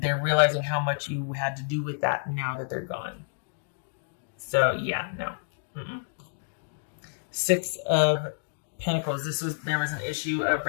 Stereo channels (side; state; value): right; silent; digital silence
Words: they're realizing how much you had to do with that now that they're gone. So, yeah, no. Mm-mm. 6 of Pentacles. There was an issue of